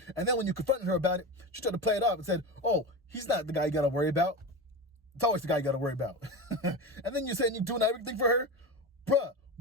And then when you confronted her about it, she tried to play it off and said, oh, he's not the guy you got to worry about. It's always the guy you got to worry about. And then you're saying you're doing everything for her? Bruh,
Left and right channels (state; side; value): normal; both; correlation 0.23